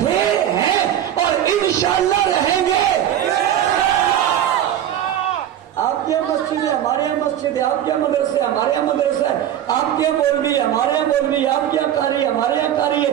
ہیں اور انشاءاللہ رہیں گے. آپ کے مسجد ہے, ہمارے یہاں مسجد ہے. آپ کے مدرسے, ہمارے یہاں مدرسہ ہے. آپ کے مولوی, ہمارے یہاں مولوی. آپ کے یہاں قاری, ہمارے یہاں قاری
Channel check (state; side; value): quieter; left; 11.1 dB